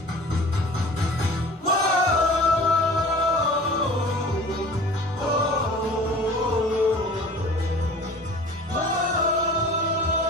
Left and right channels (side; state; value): both; normal; correlation 0.43